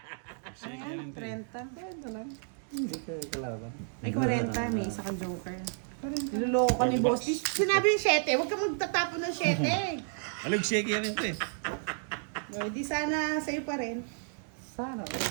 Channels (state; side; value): silent; left; 57 dB below the other